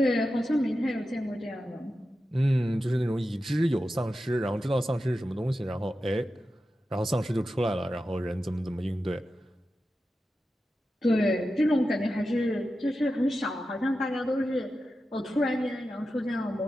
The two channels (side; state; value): both; normal; correlation 0.91